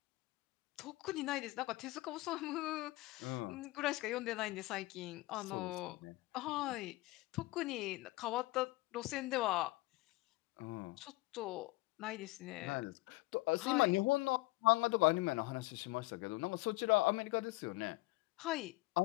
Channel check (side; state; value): right; quieter; 21.0 dB